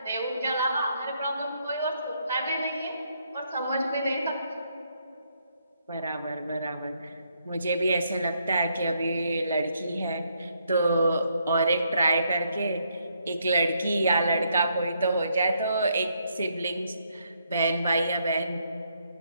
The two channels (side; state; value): both; inverted; correlation -0.74